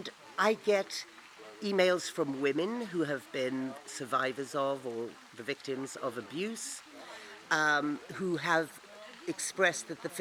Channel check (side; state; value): both; identical; correlation 1.00